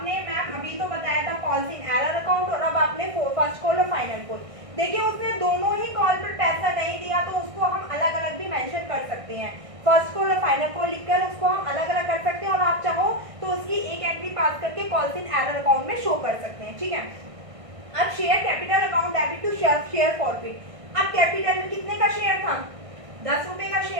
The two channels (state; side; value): late; left; 1.6 ms